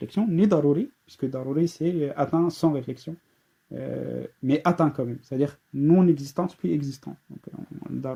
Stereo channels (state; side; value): identical; both; correlation 1.00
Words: ni daruri, puisque daruri c'est atteint sans réflexion, mais atteint quand même, c'est-à-dire non-existence puis existant. Donc